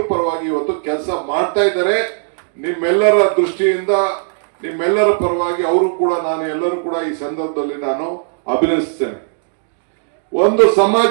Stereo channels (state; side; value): silent; left; digital silence